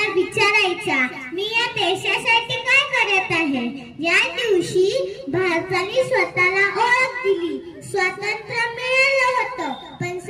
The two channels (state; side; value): identical; both; correlation 1.00